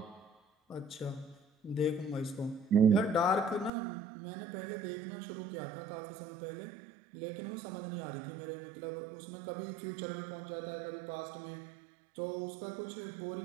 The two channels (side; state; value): left; drops out; at 3.7 s